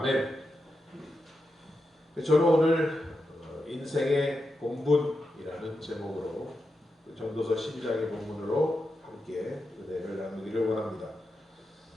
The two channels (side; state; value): both; normal; correlation 0.88